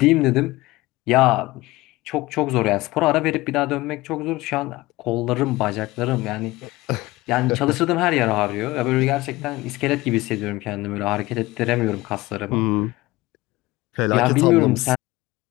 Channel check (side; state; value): right; quieter; 19.7 dB